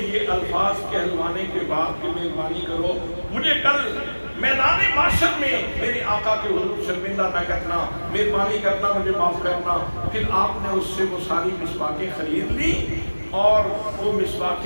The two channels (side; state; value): both; inverted; correlation -1.00